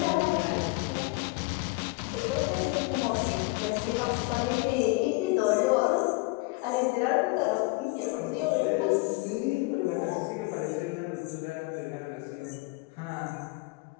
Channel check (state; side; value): quieter; right; 24.9 dB